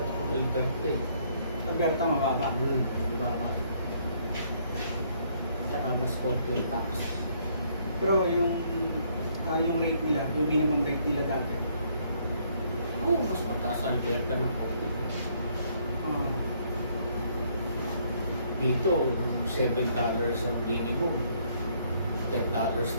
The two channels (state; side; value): inverted; both; correlation -0.67